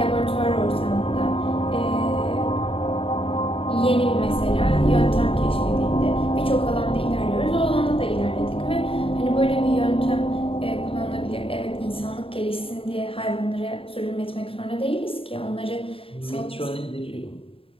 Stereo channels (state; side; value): late; right; 0.27 ms